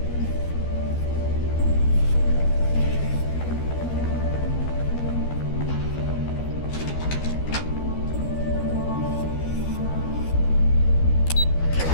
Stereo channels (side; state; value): right; late; 12 ms